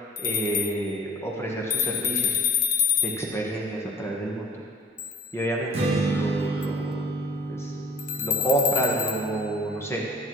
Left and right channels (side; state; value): both; normal; correlation 0.50